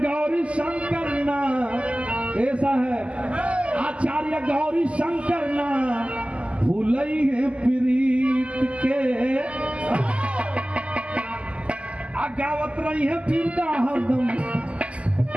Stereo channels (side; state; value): left; late; 0.058 ms